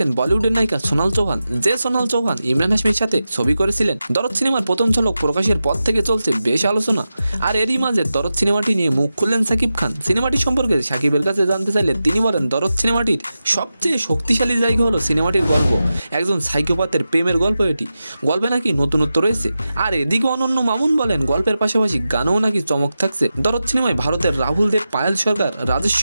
বলিউডের নায়িকা সোনাল চৌহান। যে সোনাল চৌহান ইমরান হাশমির সাথে ছবি করেছিলেন। দরদ সিনেমার প্রথম ঝলক প্রকাশের পর থেকে চলছে বেশ আলোচনা। আর এরই মাঝে দরদ সিনেমাটি নিয়ে মুখ খুললেন সাকিব খান। সিনেমাটি সম্পর্কে সাকিবের কাছে জানতে চাইলে তিনি বলেন, দরদ সিনেমাটির সবচেয়ে শক্তিশালী জায়গা হলো সিনেমাটির গল্প। একজন সাইকোপাথের প্রেমের গল্প এটি। গল্পে নাকি নতুনত্ব রয়েছে। আর এদিকে অনন্য মামুন বলেন, গল্পের পাশাপাশি গানেও নাকি চমক থাকছে। দরদ সিনেমায় ভারতের রাহুল দেব, পায়েল সরকার, রাজেশ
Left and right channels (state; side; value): inverted; both; correlation -0.92